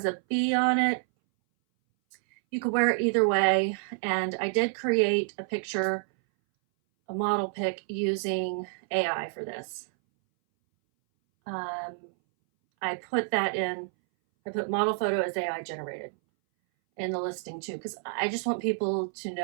a bee on it. You could wear it either way. And I did create a picture, a model pic using AI for this. I put that in, I put model photo as AI generated in the listing too, because I just want people to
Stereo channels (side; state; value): left; silent; 59 dB below the other